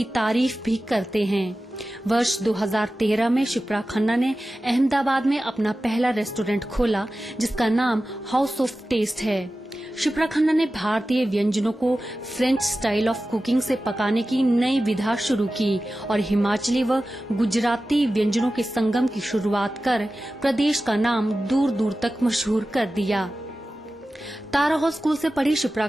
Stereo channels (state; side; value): normal; both; correlation 0.94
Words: तारीफ भी करते हैं। वर्ष 2013 में शिप्रा खन्ना ने अहमदाबाद में अपना पहला रेस्टोरेंट खोला जिसका नाम हाउस ऑफ टेस्ट है। शिप्रा खन्ना ने भारतीय व्यंजनों को फ्रेंच स्टाइल ऑफ कुकिंग से पकाने की नई विधा शुरू की और हिमाचली व गुजराती व्यंजनों के संगम की शुरुआत कर प्रदेश का नाम दूर दूर तक मशहूर कर दिया। तारा हाउस स्कूल से पढ़ी शिप्रा